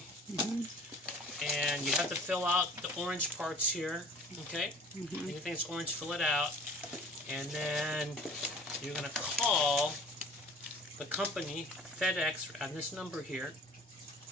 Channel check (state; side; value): normal; both; correlation 0.47